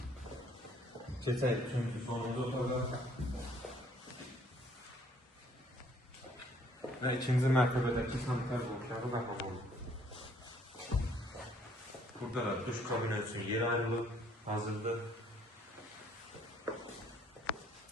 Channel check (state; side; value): normal; both; correlation 0.62